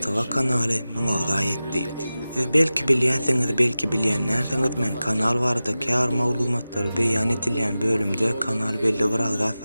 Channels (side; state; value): both; inverted; correlation -0.95